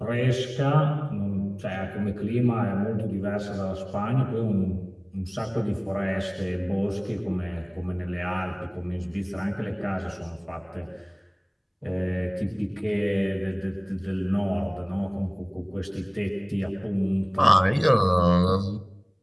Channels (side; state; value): both; identical; correlation 1.00